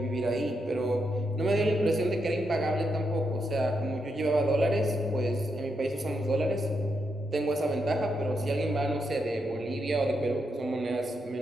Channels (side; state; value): both; normal; correlation 0.82